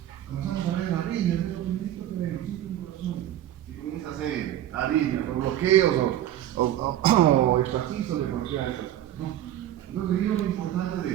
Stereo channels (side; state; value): left; quieter; 12.3 dB